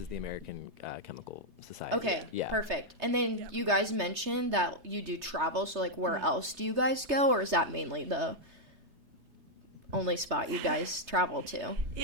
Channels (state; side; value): late; left; 3.3 ms